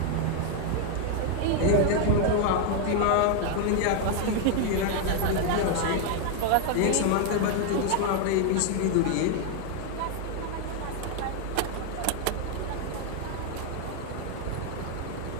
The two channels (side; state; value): both; different; correlation 0.01